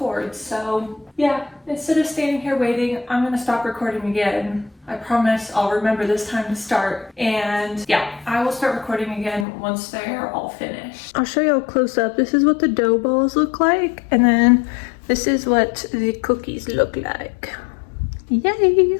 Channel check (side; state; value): right; drops out; at 9.5 s